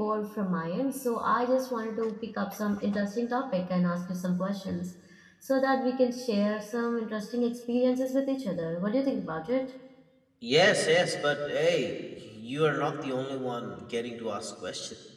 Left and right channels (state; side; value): identical; both; correlation 1.00